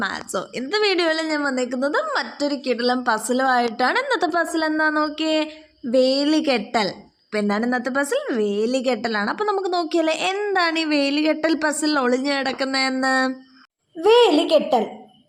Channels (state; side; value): identical; both; correlation 1.00